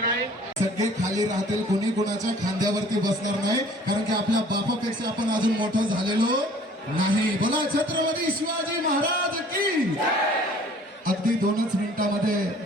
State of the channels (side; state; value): both; normal; correlation 0.52